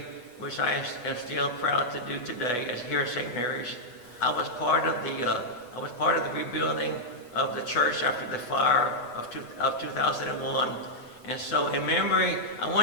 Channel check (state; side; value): late; right; 8.2 ms